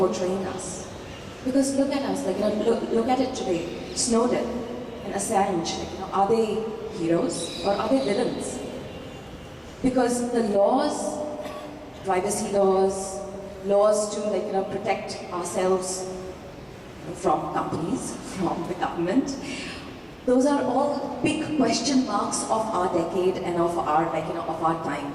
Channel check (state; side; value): identical; both; correlation 1.00